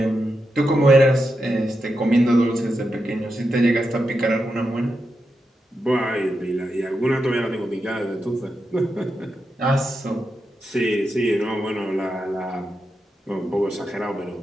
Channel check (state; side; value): normal; both; correlation 0.87